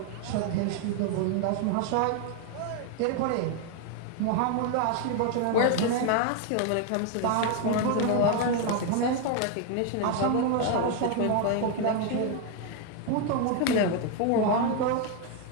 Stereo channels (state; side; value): different; both; correlation 0.01